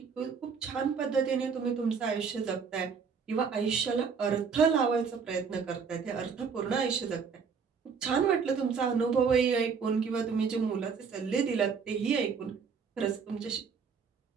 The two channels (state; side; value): quieter; left; 5.9 dB